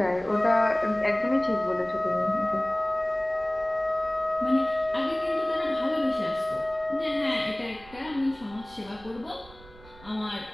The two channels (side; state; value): right; noise; rumble, 22 dB below the sound